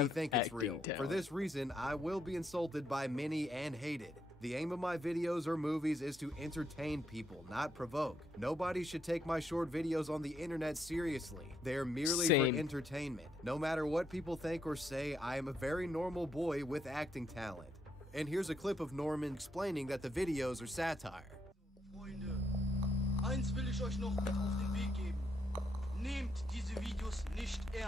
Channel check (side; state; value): both; normal; correlation 0.76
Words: think it's real. For this reason, I will be insulted by many and hated. The aim of my videos or movies is to entertain people, not provoke. Nobody should take my short videos on the internet seriously. They are merely for entertainment. No matter what people think or say, I am a very normal boy with acting talent. And here's a clip of Norman explaining that the videos are satire. Freunde, eins will ich euch noch mit auf den Weg geben. Nehmt diese Videos nicht